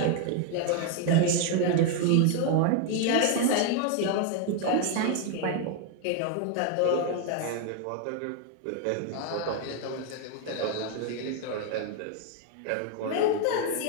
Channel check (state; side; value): different; both; correlation 0.01